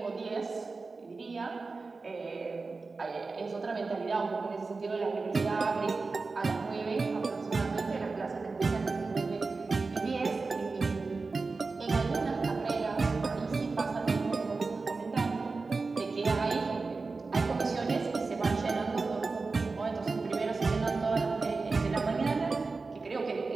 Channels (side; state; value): left; quieter; 4.0 dB